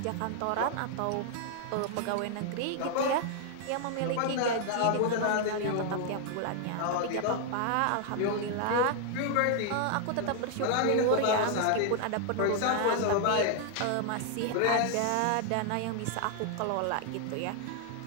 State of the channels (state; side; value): different; both; correlation 0.00